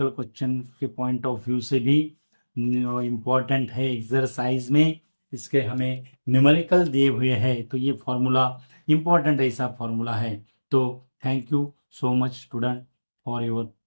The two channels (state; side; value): inverted; both; correlation -1.00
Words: क्वेश्चन के पॉइंट ऑफ व्यू से भी इम्पोर्टेंट है। एक्सरसाइज में इसके हमें न्यूमेरिकल दिए हुए हैं, तो ये फॉर्मूला इम्पोर्टेंट ऐसा फॉर्मूला है। तो thank you so much student for your